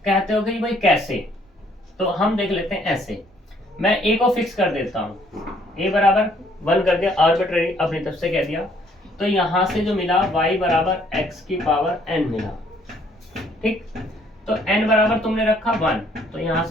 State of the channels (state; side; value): normal; both; correlation 0.64